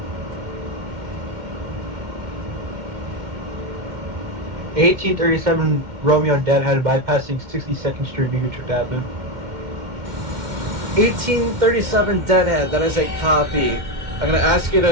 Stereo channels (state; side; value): late; left; 2.2 ms